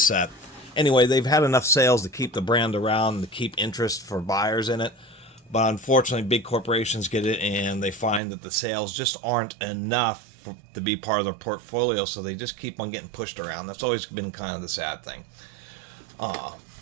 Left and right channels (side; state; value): left; drops out; at 8.2 s